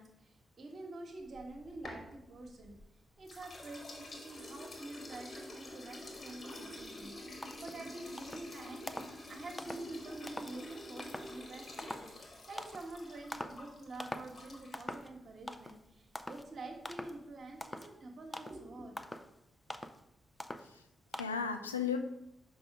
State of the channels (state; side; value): normal; both; correlation 0.58